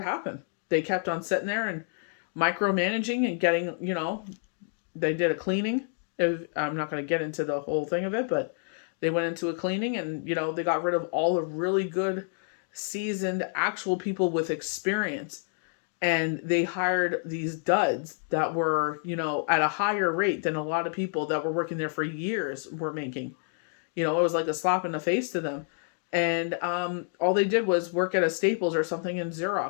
happened. They kept on sitting there and micromanaging and getting, you know, they did a cleaning. I'm not going to get into the whole thing of it, but they went into a cleaning and, you know, they got rid of all the really good, seasoned, actual people with experience. And they hired these duds that were, you know, at a higher rate than a lot of people that were working there for years were making. You know, it was like a slap in the face to them. And all they did was work at a Staples or something and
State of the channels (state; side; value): silent; right; 57 dB below the other